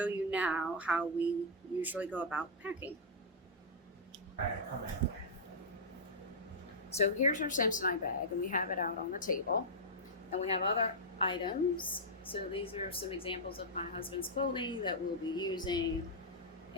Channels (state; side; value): normal; both; correlation -0.08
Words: you now how we usually go about packing. So, here's our Samsonite bag, and we have it out on the table. And we have other items. So these are some examples of my husband's clothing that we'll be using.